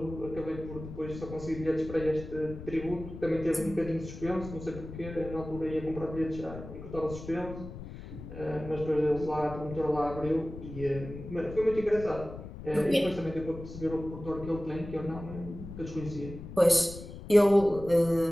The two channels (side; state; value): left; noise; rumble, 12 dB below the sound